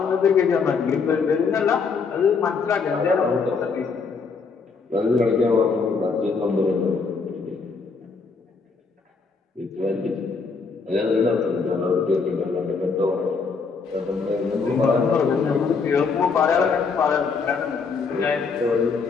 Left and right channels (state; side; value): quieter; right; 5.0 dB